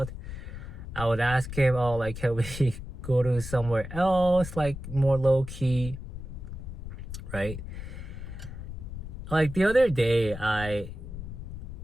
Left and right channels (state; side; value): noise; left; rumble, 9 dB below the sound